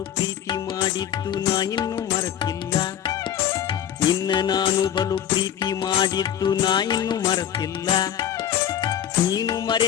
ಪ್ರೀತಿ ಮಾಡಿದ್ದು ನಾ ಇನ್ನೂ ಮರೆತಿಲ್ಲ, ನಿನ್ನ ನಾನು ಬಲು ಪ್ರೀತಿ ಮಾಡಿದ್ದು ನಾ ಇನ್ನೂ ಮರೆತಿಲ್ಲ. ನೀನು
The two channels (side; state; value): right; quieter; 10.1 dB